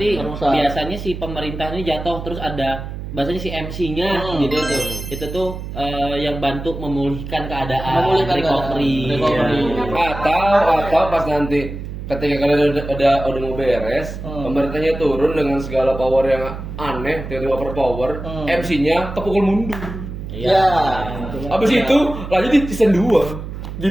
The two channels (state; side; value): noise; right; hum, 8 dB below the sound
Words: Perang besar. biasanya si pemerintah ini jatuh terus ada bahasanya si MC-nya gitu tuh. Itu tuh yang bantu memulihkan keadaan, Memulihkan recovery. keadaan. Recovery. Atau pas nanti ketika kalian udah mau beres, pemerintahnya turun dengan segala power yang aneh, tiba-tiba overpower, MC-nya kepukul mundur. Iya. Habis itu lanjut di season 2.